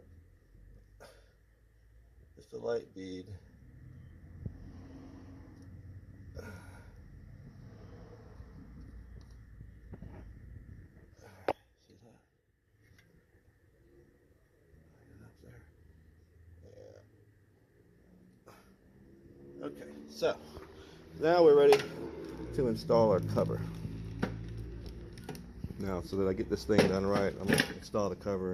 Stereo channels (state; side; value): identical; both; correlation 1.00